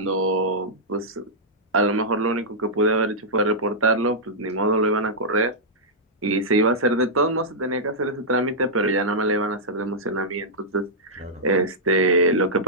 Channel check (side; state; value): both; normal; correlation -0.11